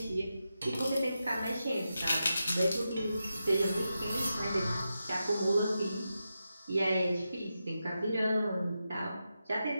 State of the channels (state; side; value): inverted; both; correlation -0.89